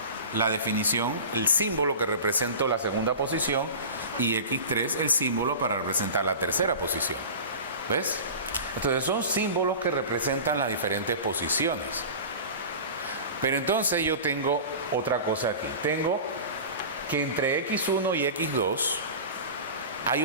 la definición, el símbolo que representa la segunda posición, y X3 el símbolo para representar la tercera posición. ¿Ves? Entonces son símbolos que representan las diferentes posiciones. Pero entonces yo tengo otra cosa aquí. Tengo que entre X1 y X2 hay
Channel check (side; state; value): both; inverted; correlation -0.34